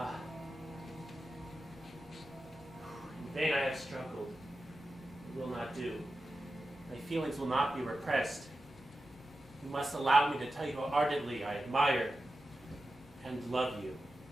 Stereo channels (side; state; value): both; normal; correlation 0.92